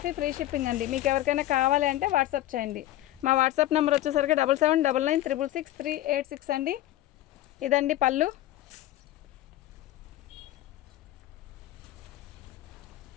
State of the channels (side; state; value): right; quieter; 14.5 dB